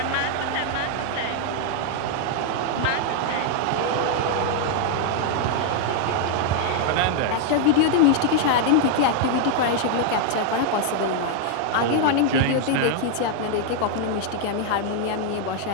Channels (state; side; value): different; both; correlation 0.00